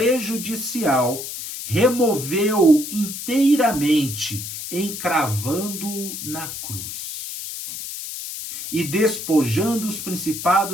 removeu inteiramente, encravando-o na cruz. E despojando os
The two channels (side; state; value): left; noise; hiss, 8 dB below the sound